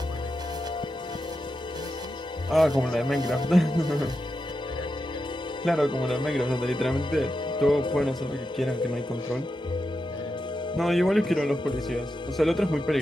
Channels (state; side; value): normal; both; correlation 0.88